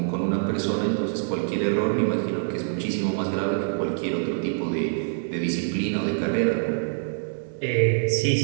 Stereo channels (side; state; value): left; silent; digital silence